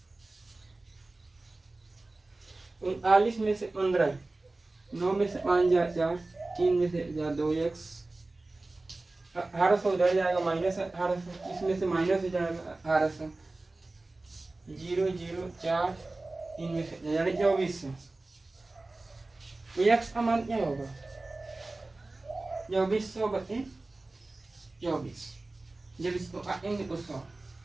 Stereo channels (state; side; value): quieter; left; 3.1 dB